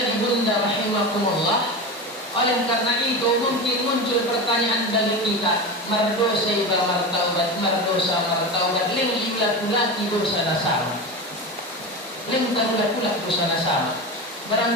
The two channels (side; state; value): both; normal; correlation 0.24